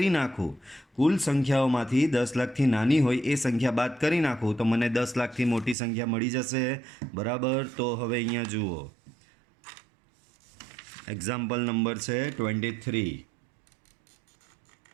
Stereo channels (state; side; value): drops out; left; at 5.8 s